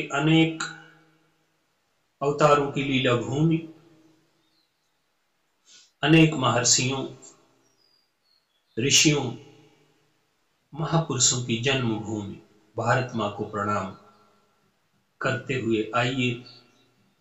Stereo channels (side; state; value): both; identical; correlation 1.00